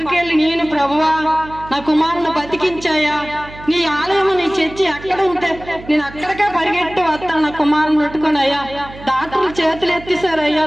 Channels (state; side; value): noise; right; hum, 17 dB below the sound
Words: వెళ్ళి, నేను ప్రభువా నా కుమారుని బతికించాయా, నీ ఆలయం నీ చర్చి అక్కడ ఉంటే నేను అక్కడికే పరిగెట్టి వస్తాను నా కుమారుని పెట్టుకుని. అయ్యా డాక్టర్లు చేతులు ఎత్తేసారు, అయ్యా